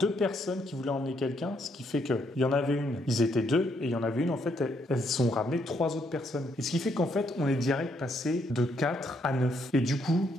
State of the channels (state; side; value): normal; both; correlation 0.73